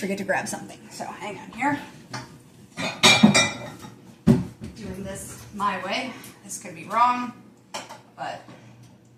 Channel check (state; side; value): identical; both; correlation 1.00